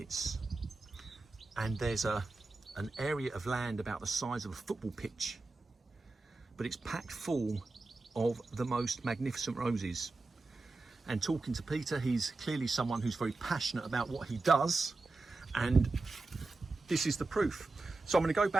And there's an area of land about the size of a football pitch. But it's packed full of the most magnificent roses. And talking to Peter, he's clearly someone who's very passionate about what he does. And this is the proof. So I'm going to go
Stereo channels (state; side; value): quieter; left; 3.5 dB